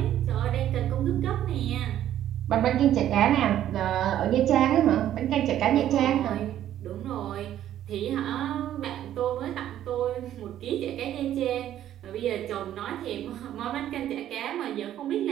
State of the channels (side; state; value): left; quieter; 11.7 dB